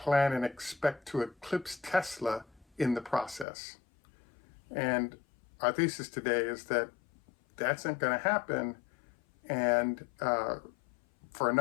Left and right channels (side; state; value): right; drops out; at 3.5 s